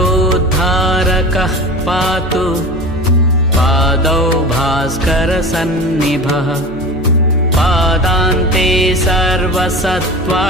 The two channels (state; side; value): normal; both; correlation 0.33